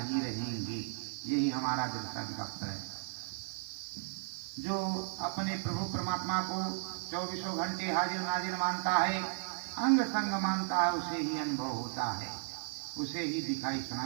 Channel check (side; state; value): left; silent; digital silence